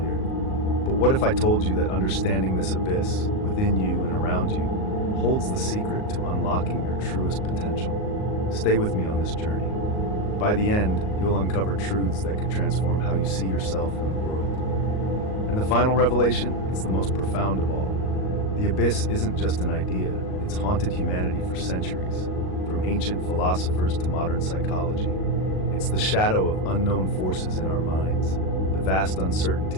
But what if I told you that understanding this abyss, within you and around you, holds the secret to unlocking your truest potential? Stay with me on this journey. By the end, you'll uncover truths that could transform how you see yourself and the world. And the final revelation, it's the most profound of all. The abyss isn't just an idea, it's haunted humanity for centuries, from ancient philosophers to modern psychology. It's the shadow of unknown forces in our minds, the vast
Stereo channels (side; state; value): right; late; 38 ms